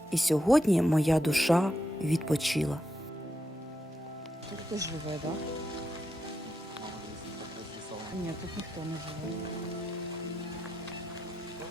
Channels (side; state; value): both; normal; correlation 0.84